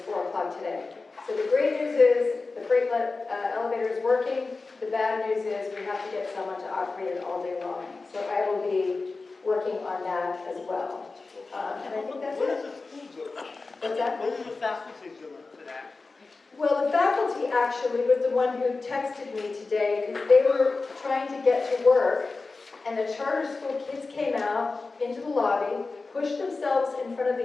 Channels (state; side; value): quieter; right; 3.8 dB